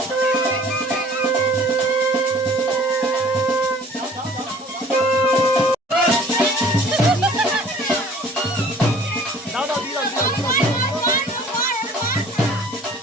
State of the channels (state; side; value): normal; both; correlation 0.51